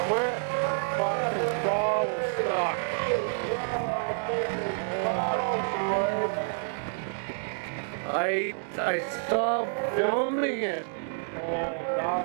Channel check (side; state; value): left; silent; 59 dB below the other